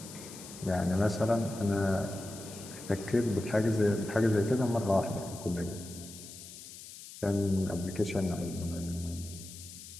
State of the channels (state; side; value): noise; left; hiss, 14 dB below the sound